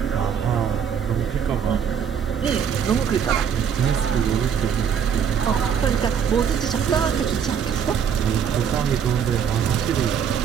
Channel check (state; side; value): quieter; left; 7.7 dB